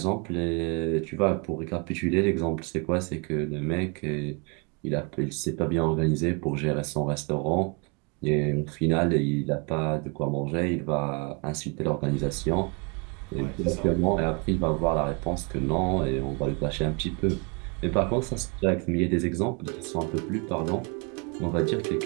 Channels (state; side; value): quieter; left; 32.7 dB